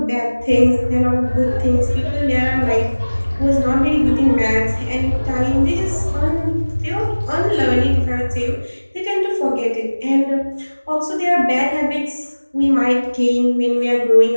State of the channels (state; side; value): inverted; both; correlation -1.00